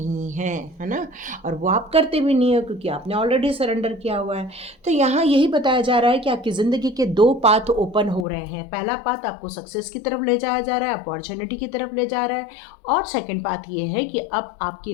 है ना, और वो आप करते भी नहीं हो क्योंकि आपने ऑलरेडी सरेंडर किया हुआ है। तो यहाँ यही बताया जा रहा है कि आपकी ज़िंदगी के 2 पाथ ओपन हो रहे हैं। पहला पाथ आपको सक्सेस की तरफ ले जाया जा रहा है, अपॉर्चुनिटी की तरफ ले जा रहा है, और सेकेंड बात ये है कि अब आपकी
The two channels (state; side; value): drops out; right; at 8.2 s